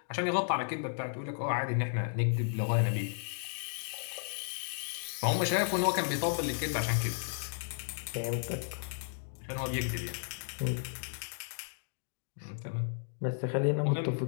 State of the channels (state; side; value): silent; right; digital silence